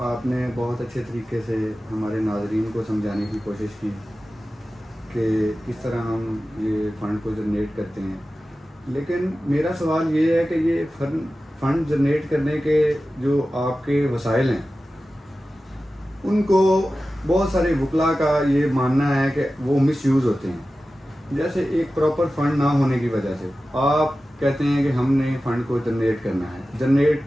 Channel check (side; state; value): both; normal; correlation 0.95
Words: آپ نے بہت اچھے طریقے سے ہمارے ناظرین کو سمجھانے کی کوشش کی کہ کس طرح ہم یہ فنڈ کو جنریٹ کرتے ہیں، لیکن میرا سوال یہ ہے کہ یہ فنڈ جنریٹ کرنے کے جو آپ کے وسائل ہیں ان کو بہت سارے وکلاء کا یہ ماننا ہے کہ وہ مس یوز ہوتے ہیں. جیسے ایک پراپر فنڈ نہ ہونے کی وجہ سے آپ کہتے ہیں کہ ہم نے فنڈ کو جنریٹ کرنا ہے. جنریٹ